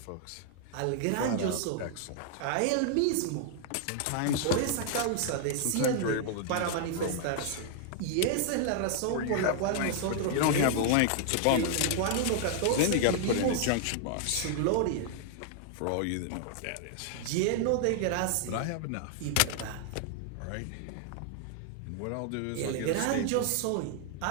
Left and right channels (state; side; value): different; both; correlation 0.00